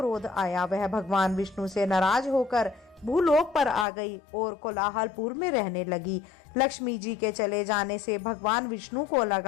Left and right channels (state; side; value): drops out; right; at 3.9 s